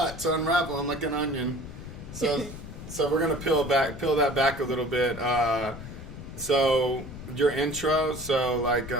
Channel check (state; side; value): noise; left; rumble, 12 dB below the sound